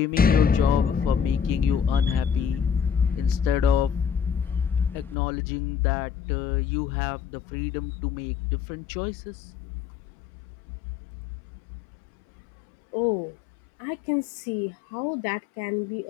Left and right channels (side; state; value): right; drops out; at 5.2 s